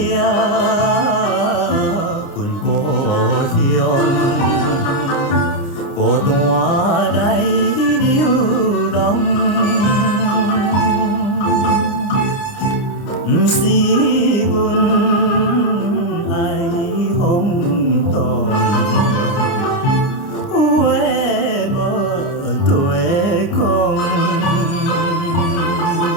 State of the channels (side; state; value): right; late; 29 ms